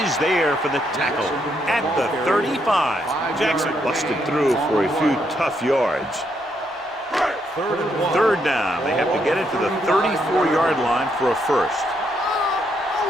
there for the tackle at the 35. Jackson busted through for a few tough yards. 3rd down. They have to get it to the 34-yard line for a first.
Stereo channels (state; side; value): normal; both; correlation 0.76